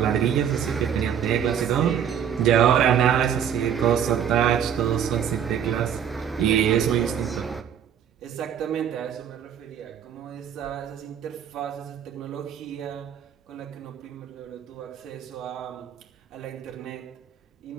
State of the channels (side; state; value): left; quieter; 8.8 dB